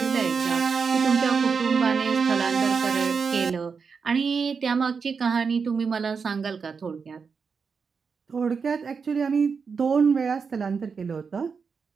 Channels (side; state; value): left; quieter; 5.5 dB